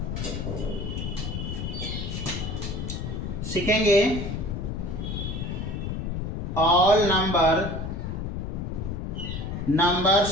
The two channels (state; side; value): noise; left; rumble, 4 dB below the sound